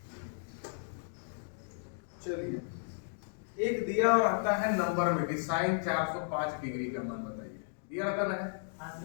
चलिए, एक दिया रहता है नंबर में कि साइन 405 डिग्री का मान बताइए, दिया रहता ना है,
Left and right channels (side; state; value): right; silent; digital silence